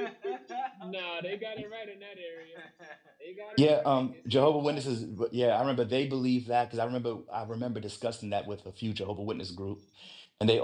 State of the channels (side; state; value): both; identical; correlation 1.00